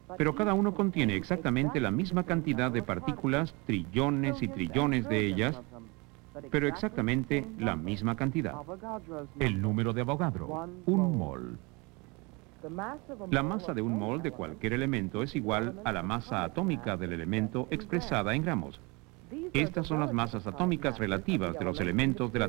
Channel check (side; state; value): left; quieter; 27.6 dB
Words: pero cada uno contiene exactamente la misma cantidad de partículas, trillones y trillones de ellas, pero exactamente la misma cantidad. El número de Avogadro, un mol. La masa de un mol de cualquier elemento es igual a la masa atómica del elemento expresada en gramos. Estas son las masas atómicas relativas de los elementos de la